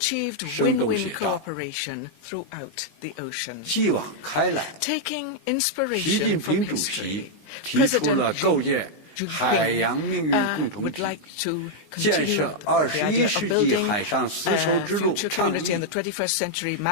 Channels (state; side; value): late; right; 19 ms